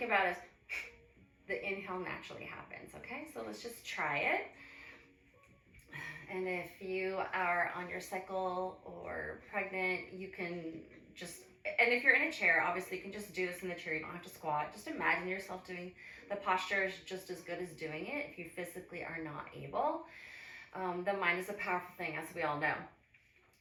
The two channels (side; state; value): both; identical; correlation 1.00